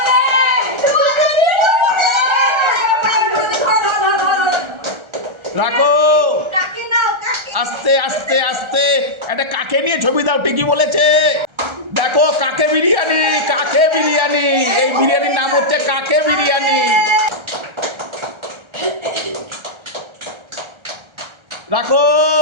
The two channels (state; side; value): late; left; 1.3 ms